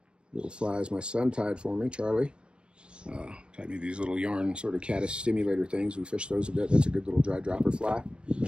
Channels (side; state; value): left; late; 0.052 ms